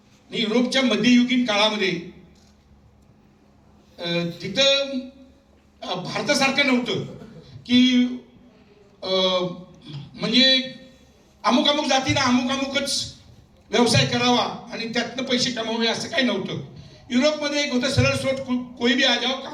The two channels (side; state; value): both; identical; correlation 1.00